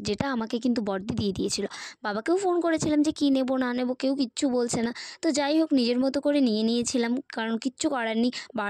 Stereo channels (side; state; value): both; identical; correlation 1.00